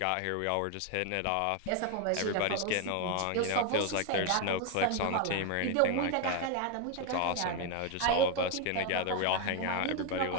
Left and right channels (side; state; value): both; different; correlation 0.01